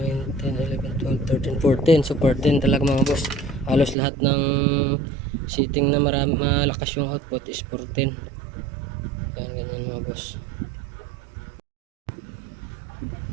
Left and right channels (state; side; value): drops out; left; at 4.0 s